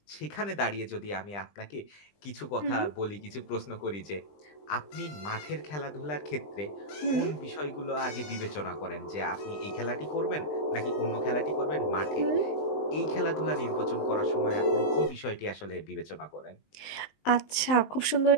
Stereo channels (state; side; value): late; right; 19 ms